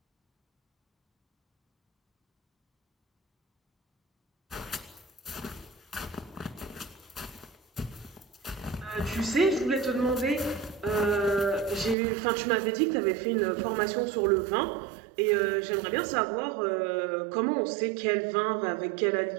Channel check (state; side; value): drops out; left; at 12.0 s